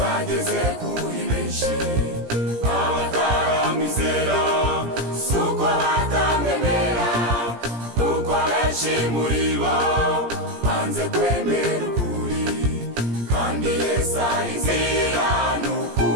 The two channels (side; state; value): left; late; 17 ms